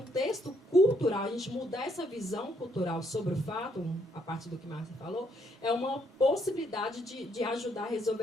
cultural, a gente mudar essa visão cultural sobre o fato, a partir do que Márcia falou, é uma possibilidade de ajudar a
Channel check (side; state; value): both; normal; correlation 0.71